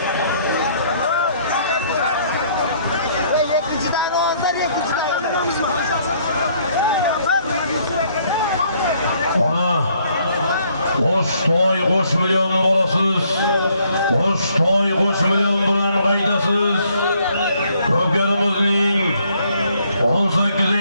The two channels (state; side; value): inverted; both; correlation -0.66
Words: Ana Qo'shtoy qo'sh million bolasiz. Qo'shtoy qo'sh million bilan qaydasiz. Ko'karimizning